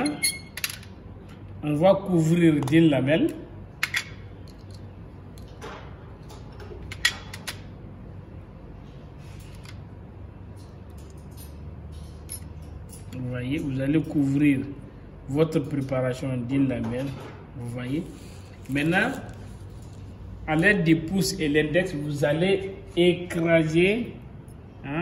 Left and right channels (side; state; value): both; identical; correlation 1.00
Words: on va couvrir d'une lamelle. Vous voyez, vous allez couvrir votre préparation d'une lamelle. Vous voyez. Maintenant, à l'aide du pouce et l'index, vous allez écraser